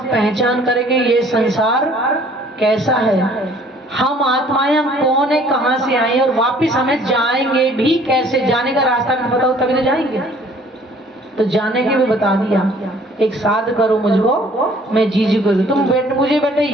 पहचान करेंगे ये संसार कैसा है, हम आत्माएं, हम कौन है, कहाँ से आए और वापिस हमें जाएंगे भी कैसे, जाने का रास्ता भी पता हो तभी तो जाएंगे। तो जाने की भी बता दिया, एक साध करो मुझको मैं जीजी करूँ, तुम मुझे बेटे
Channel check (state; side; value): normal; both; correlation 0.56